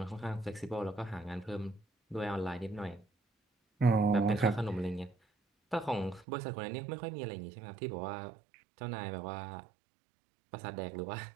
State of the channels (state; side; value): drops out; left; at 6.2 s